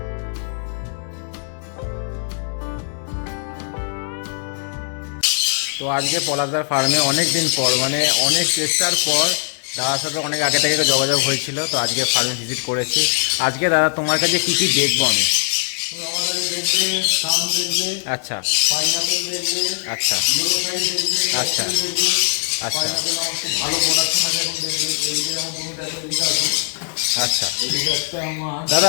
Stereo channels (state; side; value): silent; right; digital silence